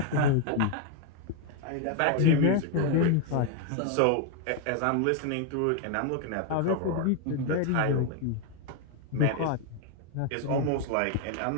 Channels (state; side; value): different; both; correlation 0.01